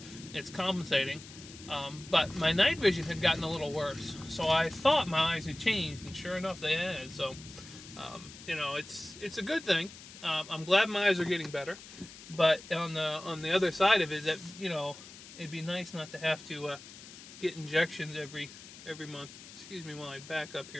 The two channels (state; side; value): noise; left; hiss, 16 dB below the sound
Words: It's compensating. But my night vision had gotten a little worse. So I thought my eyes had changed, and sure enough they had. So, you know, it's a good thing. I'm glad my eyes are getting better. But on the other side of it, that, you know, it'd be nice not to have to get injections every month. Excuse me while I back up